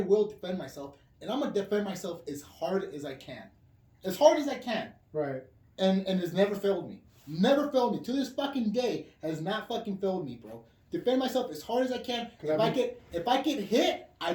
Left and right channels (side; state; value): both; identical; correlation 1.00